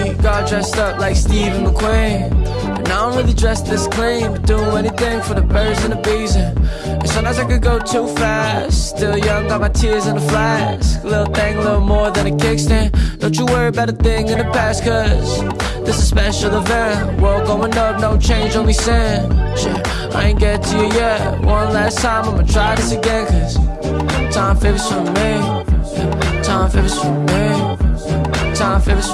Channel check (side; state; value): both; identical; correlation 1.00